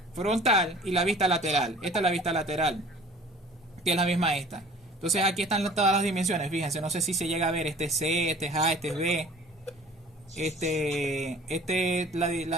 frontal y la vista lateral. Esta es la vista lateral, que es la misma esta. Entonces aquí están todas las dimensiones. Fíjense, no sé si se llega a ver. Este es C, este es A, este es B. Este es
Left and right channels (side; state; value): both; normal; correlation 0.48